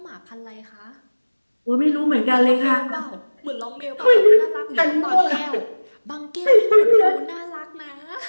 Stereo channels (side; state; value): both; inverted; correlation -1.00